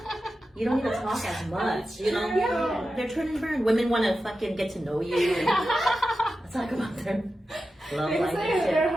You don't need to talk as much, Yeah. They're turn and burn. Women want to fucking get to know you and talk about their love life and shit. They're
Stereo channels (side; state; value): both; normal; correlation 0.92